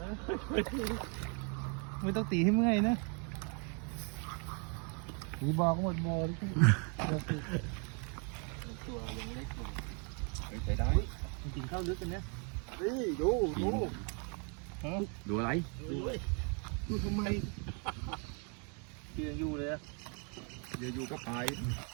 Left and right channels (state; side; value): quieter; left; 37.5 dB